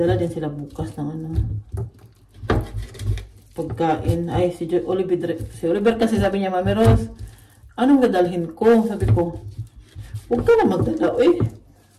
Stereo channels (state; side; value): identical; both; correlation 1.00